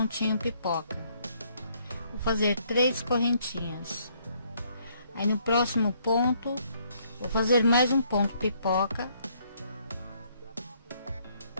pipoca. Vou fazer 3 correntinhas. Aí no próximo ponto vou fazer mais um ponto pipoca.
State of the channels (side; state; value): both; inverted; correlation -0.67